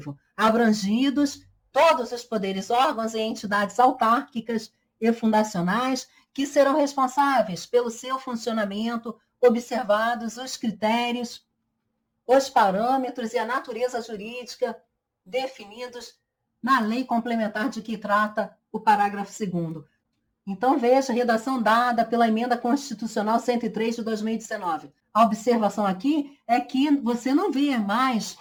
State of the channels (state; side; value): identical; both; correlation 1.00